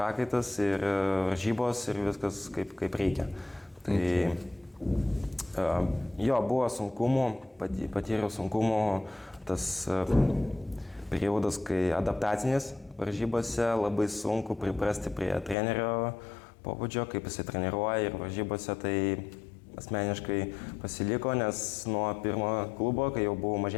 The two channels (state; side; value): drops out; right; at 15.6 s